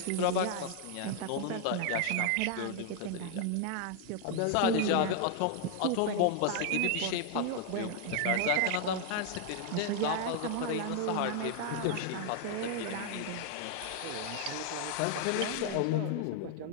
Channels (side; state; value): both; different; correlation 0.00